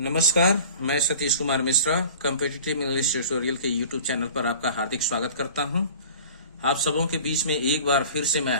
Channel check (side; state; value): both; inverted; correlation -0.42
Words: मैं Satish Kumar Mishra competitive English tutorial के यूट्यूब चैनल पर आपका हार्दिक स्वागत करता हूं। आप सबों के बीच में एक बार फिर से